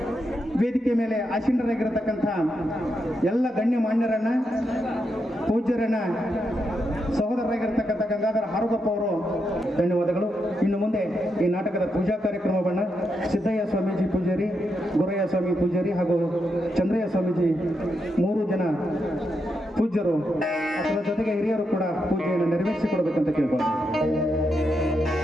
ವೇದಿಕೆ ಮೇಲೆ ಆಸೀನರಾಗಿರತಕ್ಕಂಥ ಎಲ್ಲ ಗಣ್ಯಮಾನ್ಯರನ್ನ, ಪೂಜ್ಯರನ್ನ, ಸಹೋದರರಾಗಿರ್ತಕ್ಕಂಥ ಗಂಗಾಧರ ಹಾರುಗಪ್ಪ ಅವರು ಧನ್ಯವಾದಗಳು. ಇನ್ನು ಮುಂದೆ ಈ ನಾಟಕದ ಪೂಜಾ ಕಾರ್ಯಕ್ರಮವನ್ನು ಸಿದ್ದಯ್ಯ ಸ್ವಾಮೀಜಿ ಪೂಜಾರಿ, ಗುರಯ್ಯ ಸ್ವಾಮಿ ಪೂಜಾರಿ ಹಾಗೂ ಚಂದ್ರಯ್ಯ ಸ್ವಾಮೀಜಿ 3 ಜನ ಪೂಜ್ಯರು ಅದರ ಜೊತೆಗೆ ಹಿರಿಯರು ಕೂಡ ಪೂಜೆಯನ್ನು ನೆರವೇರಿಸಿಕೊಡಬೇಕಂತ ಕೇಳ್ಕೊಳ್ತಾರೆ.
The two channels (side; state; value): both; normal; correlation 0.83